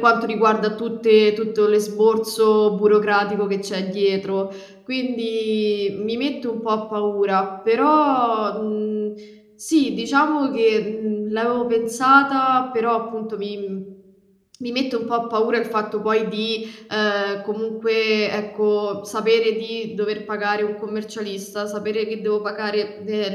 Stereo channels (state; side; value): identical; both; correlation 1.00